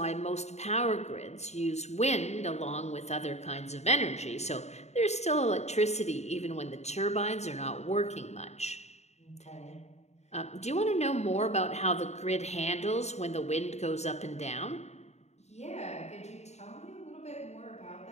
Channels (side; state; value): right; late; 0.32 ms